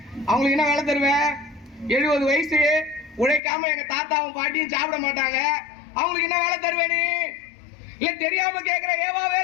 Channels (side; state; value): right; drops out; at 3.4 s